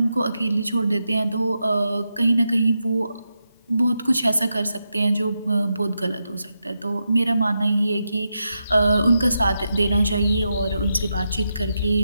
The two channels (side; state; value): both; inverted; correlation -0.87